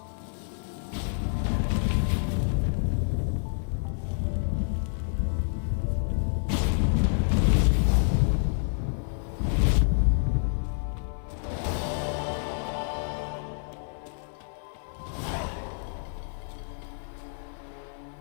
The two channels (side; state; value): right; silent; 59 dB below the other